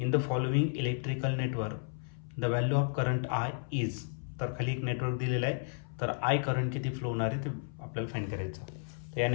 the following electrical network the value of current I is, तर खाली एक नेटवर्क दिलेलं आहे, तर आय करंट किती फ्लो होणार आहे ते आपल्याला फाइंड करायचं. तर या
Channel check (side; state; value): right; silent; 56 dB below the other